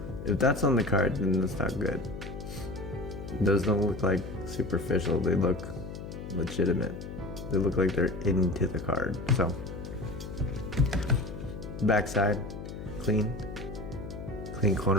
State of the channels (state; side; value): noise; left; hum, 9 dB below the sound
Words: if that's on the card, then that's not good. Those don't look like superficial. They look legitimate. They look like they're into the card. So backside, clean. Clean